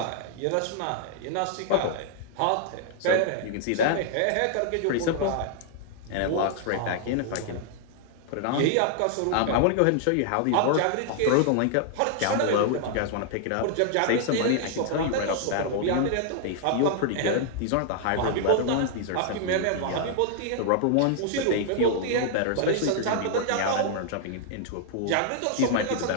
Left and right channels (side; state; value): both; different; correlation 0.00